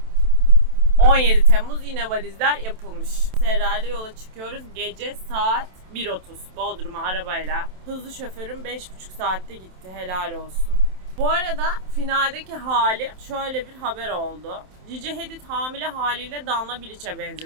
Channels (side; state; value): left; late; 27 ms